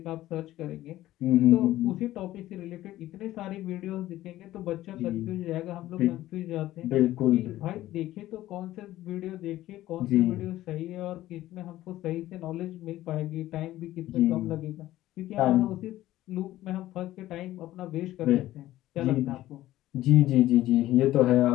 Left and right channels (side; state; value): right; quieter; 15.0 dB